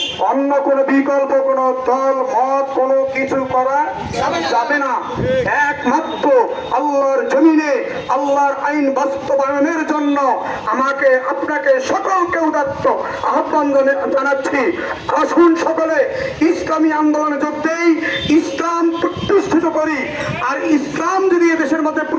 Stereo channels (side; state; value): both; identical; correlation 1.00